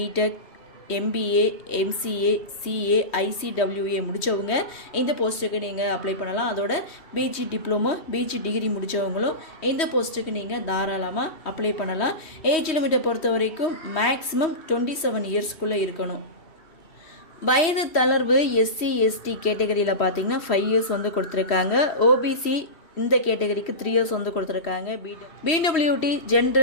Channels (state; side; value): late; right; 3.1 ms